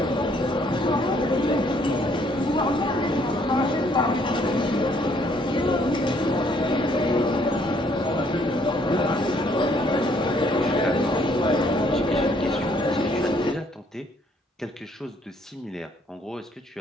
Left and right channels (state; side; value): normal; both; correlation 0.65